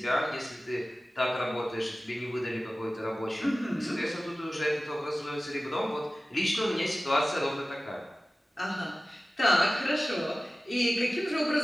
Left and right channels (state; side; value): normal; both; correlation 0.96